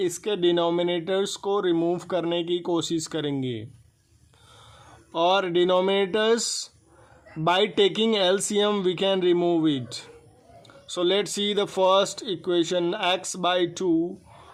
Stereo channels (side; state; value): both; identical; correlation 1.00